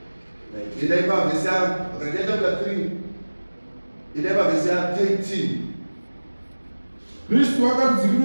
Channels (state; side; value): inverted; both; correlation -1.00